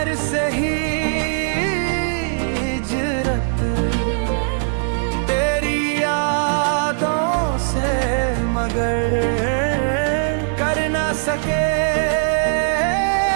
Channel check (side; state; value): left; silent; digital silence